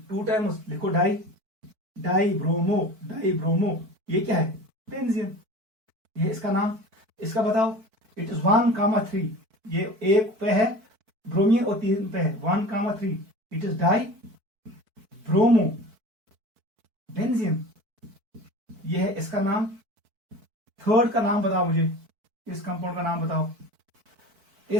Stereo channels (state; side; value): late; left; 4.5 ms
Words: 2 times, लिखो डाई ब्रोमो। ये क्या है? बेंजीन। ये इसका नाम, इसका बताओ। इट इज 1,3, ये 1 पे है ब्रोमीन और 3 पे है, 1,3 it is die bromo benzene. ये है इसका नाम। थर्ड का नाम बताओ मुझे, इस कंपाउंड का नाम बताओ।